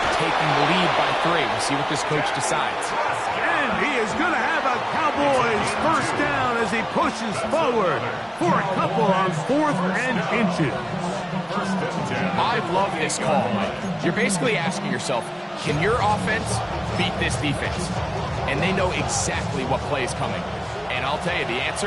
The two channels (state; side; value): identical; both; correlation 1.00